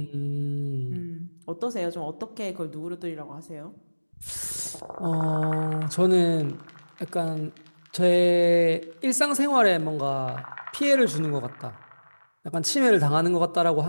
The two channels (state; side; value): inverted; both; correlation -1.00